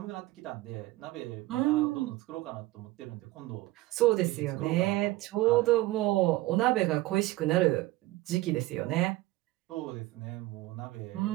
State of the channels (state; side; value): quieter; left; 18.2 dB